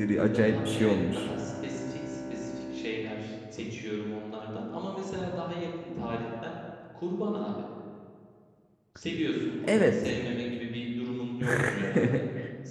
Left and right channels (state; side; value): identical; both; correlation 1.00